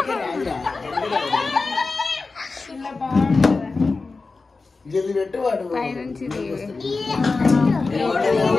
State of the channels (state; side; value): quieter; right; 4.0 dB